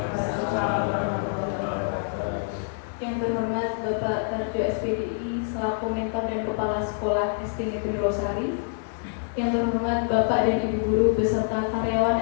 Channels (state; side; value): silent; right; digital silence